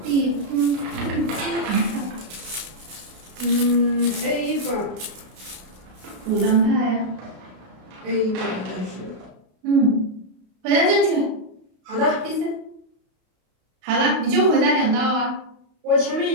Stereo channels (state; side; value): late; left; 32 ms